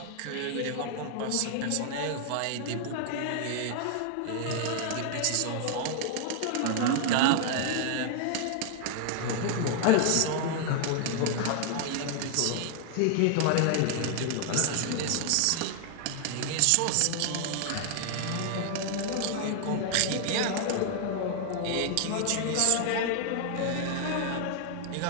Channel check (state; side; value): different; both; correlation 0.00